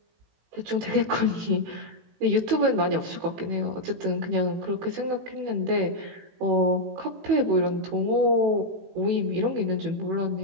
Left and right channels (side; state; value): left; late; 18 ms